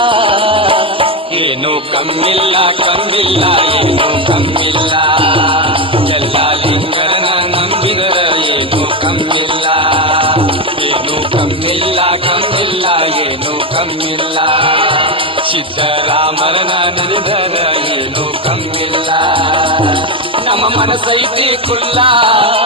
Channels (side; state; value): both; normal; correlation 0.10